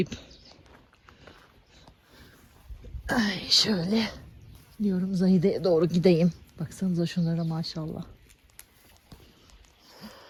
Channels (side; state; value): both; identical; correlation 1.00